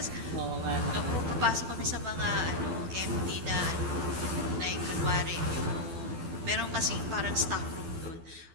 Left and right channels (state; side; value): late; left; 12 ms